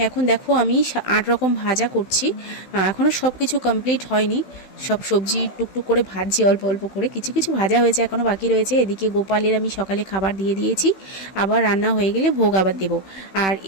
এখন দেখো আমি 8 রকম ভাজা করছি। এখনও সব কিছু কমপ্লিট হয়নি, সব সবজি টুকটুক করে ভাজছি অল্প অল্প করে, কিছু কিছু ভাজা হয়েছে এখনও বাকি রয়েছে। এদিকে গোপালের আমি সকালে খাবার দিয়ে দিয়েছি, আবার রান্না হয়ে গেলে ভোগ আবার দেবো। আর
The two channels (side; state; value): right; late; 16 ms